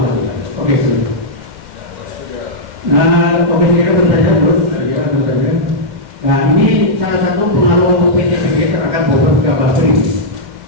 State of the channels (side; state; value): left; late; 2.1 ms